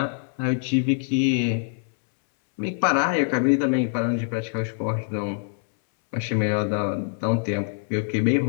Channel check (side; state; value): right; silent; 62 dB below the other